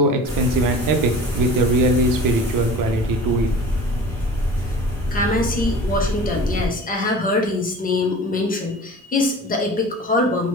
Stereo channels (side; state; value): both; normal; correlation 0.40